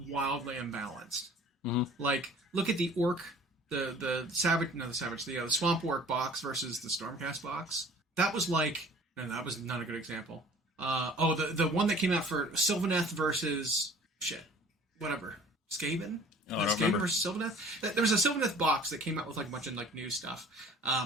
wildly imbalanced. Mm-hmm. Like, look at the orc, the swamp orc box versus the stormcast box. That was like, no, that was not a good example. The one that came out for Sylvaneth versus Skaven? Skaven versus Sylvaneth? There was a Sylvaneth box that came out with like a bunch of like new stuff.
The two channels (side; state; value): both; normal; correlation 0.49